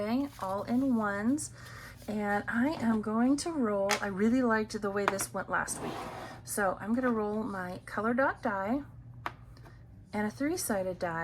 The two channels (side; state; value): both; identical; correlation 1.00